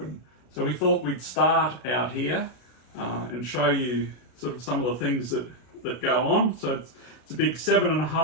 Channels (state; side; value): late; right; 33 ms